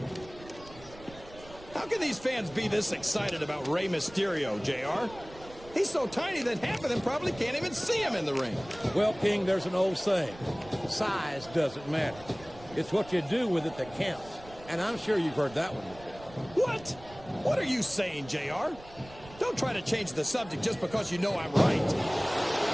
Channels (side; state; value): right; noise; rumble, 19 dB below the sound